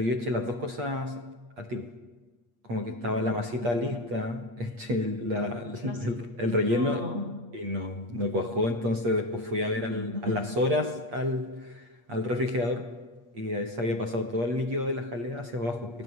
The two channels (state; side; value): late; left; 8.4 ms